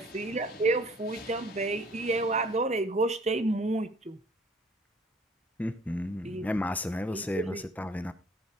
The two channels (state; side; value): normal; both; correlation 0.55